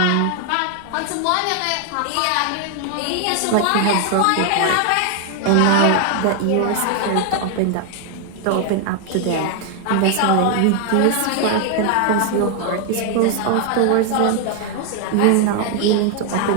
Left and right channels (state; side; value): different; both; correlation 0.00